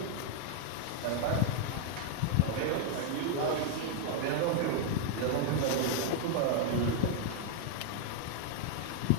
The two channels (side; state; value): both; different; correlation -0.01